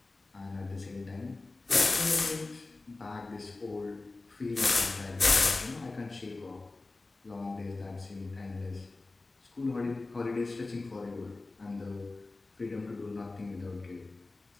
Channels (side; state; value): right; quieter; 3.3 dB